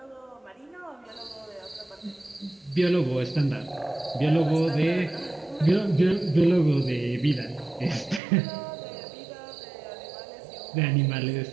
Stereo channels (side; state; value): left; drops out; at 8.2 s